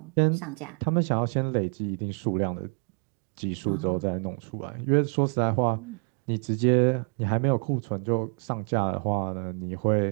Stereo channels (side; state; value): left; quieter; 39.8 dB